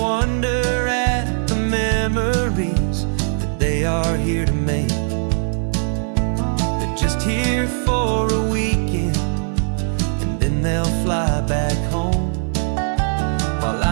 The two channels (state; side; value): silent; left; digital silence